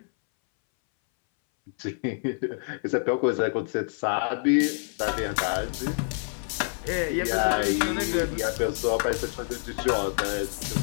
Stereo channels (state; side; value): silent; right; 60 dB below the other